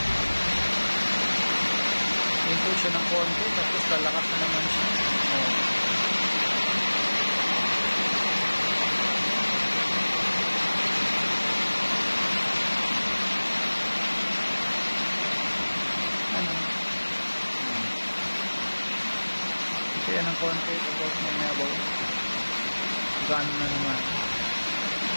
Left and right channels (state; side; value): inverted; both; correlation -1.00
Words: Hinto siya ng konti tapos lalakas na naman siya. Hinto yan ng konti tapos may nabaw. Gano'n na naman.